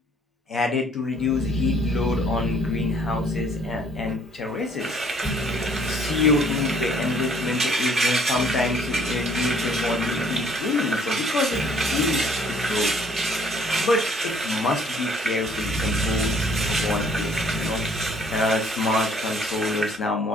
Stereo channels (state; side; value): normal; both; correlation 0.60